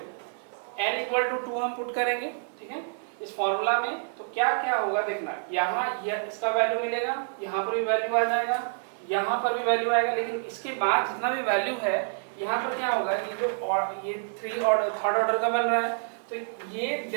n इक्वल टू 2 हम पुट करेंगे। ठीक है, इस फॉर्मूला में तो क्या क्या होगा देखना, यहाँ इसका वैल्यू मिलेगा, यहाँ पर भी वैल्यू आ जाएगा, यहाँ पर भी वैल्यू आएगा, लेकिन इसके बाद जितना भी वैल्यू है यहाँ पर क्या होगा, ये जो ये थर्ड ऑर्डर का बन रहा है, तो ये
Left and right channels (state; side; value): silent; left; digital silence